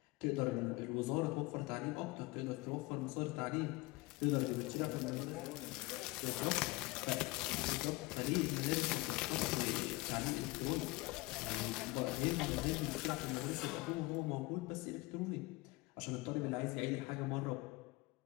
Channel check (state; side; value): quieter; right; 22.8 dB